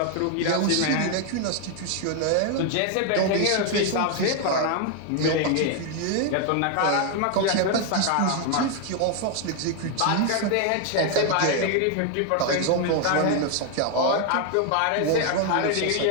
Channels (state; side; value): different; both; correlation 0.01